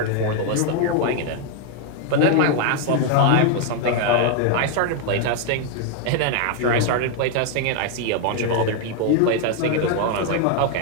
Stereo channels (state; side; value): different; both; correlation 0.01